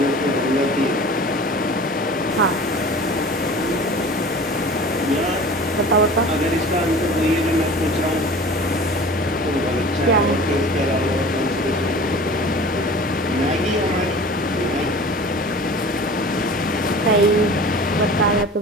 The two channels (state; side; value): normal; both; correlation 0.41